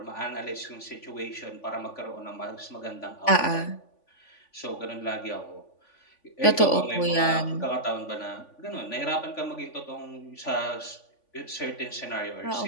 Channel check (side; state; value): right; late; 3.5 ms